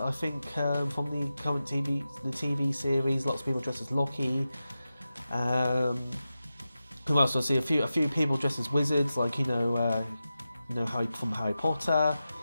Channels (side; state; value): both; inverted; correlation -0.92